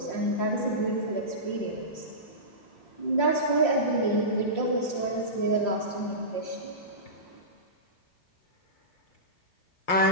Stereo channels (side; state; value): right; late; 5.7 ms